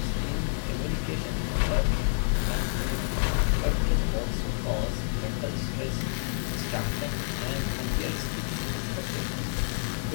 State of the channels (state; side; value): silent; right; digital silence